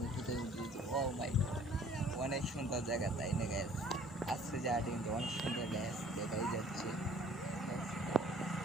কোথায় উঠেছি, ও মাই গড অনেক সুন্দর জায়গা তাই না গ্যাস। আজকে জায়গাটা কিন্তু অনেক সুন্দর গ্যাস দেখাই যাচ্ছে।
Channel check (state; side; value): normal; both; correlation 0.54